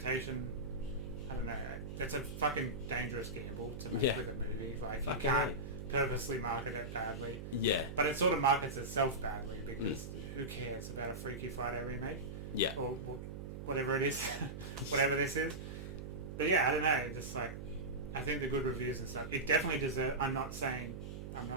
I don't know. It's a fucking dangerous gamble to make with a movie. Like, you can't purposely market it badly. Yeah. But it sort of markets itself badly because who cares about a Freaky Friday remake? Yeah. Or whatever it is. Whatever this is. But yeah, I don't know. Just like, I think the good reviews and stuff, it definitely deserves... I'm not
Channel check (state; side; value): noise; right; hum, 8 dB below the sound